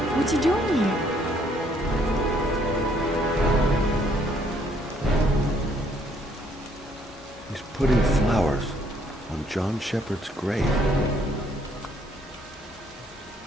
What's he doing here? He's putting flowers on John Shepherd's grave.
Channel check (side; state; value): both; normal; correlation 0.66